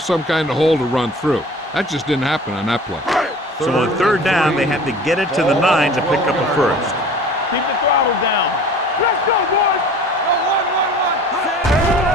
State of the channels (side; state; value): both; normal; correlation 0.44